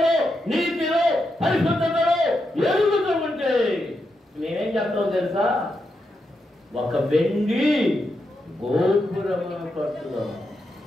నీతిలో, పరిశుద్ధతలో ఎదుగుతూ ఉంటే మేమేం చెప్తాం తెలుసా? ఒక వెండి గోపురమును కట్టుదాం.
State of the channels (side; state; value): both; normal; correlation 0.84